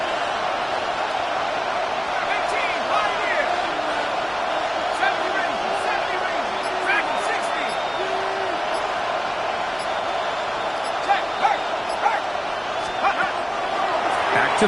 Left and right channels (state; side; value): identical; both; correlation 1.00